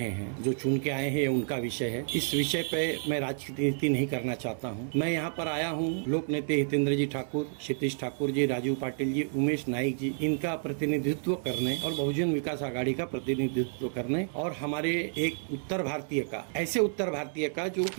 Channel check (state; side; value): silent; left; 58 dB below the other